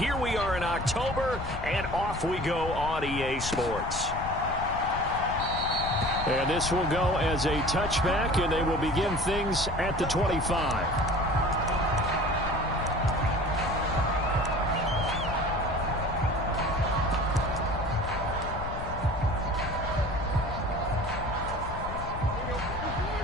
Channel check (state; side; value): noise; left; rumble, 8 dB below the sound